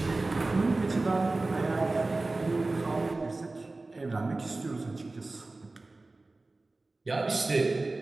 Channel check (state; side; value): quieter; left; 3.2 dB